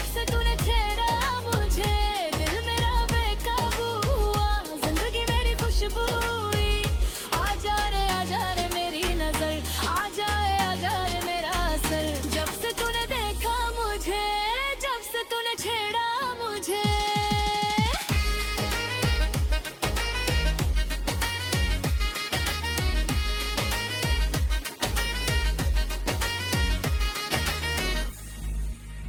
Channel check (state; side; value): identical; both; correlation 1.00